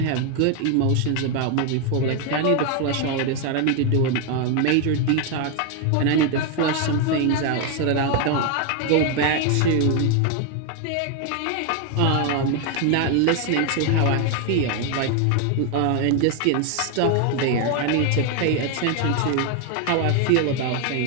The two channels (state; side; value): different; both; correlation 0.01